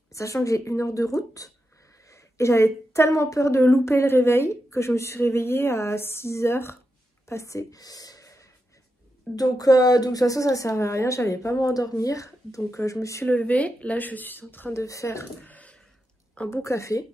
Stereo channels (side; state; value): both; normal; correlation 0.87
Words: sachant que j'ai 1 heure de route. Et j'avais tellement peur de louper le réveil que je me suis réveillée à 6 h passées. Donc de toute façon ça servait à rien, j'allais pas m'endormir. Donc je me suis levée, là je suis en train de faire un bon café.